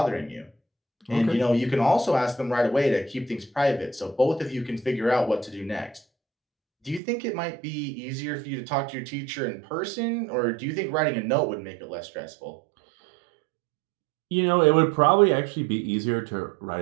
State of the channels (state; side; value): drops out; left; at 7.0 s